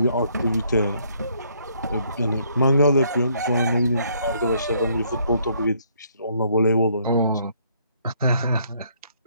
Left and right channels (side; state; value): both; inverted; correlation -0.68